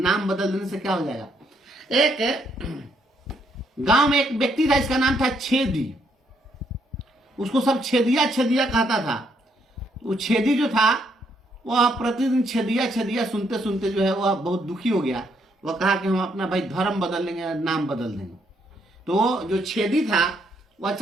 नाम बदल देने से क्या हो जाएगा। एक गांव में एक व्यक्ति था, इसका नाम था छेदी। उसको सब छेदिया छेदिया कहता था। वो छेदी जो था वह प्रतिदिन छेदिया छेदिया सुनते सुनते जो है वह बहुत दुखी हो गया। वह कहा कि हम अपना भाई धर्म बदल लेंगे, नाम बदल देंगे। तो जो छेदी था वह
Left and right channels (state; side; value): normal; both; correlation 0.73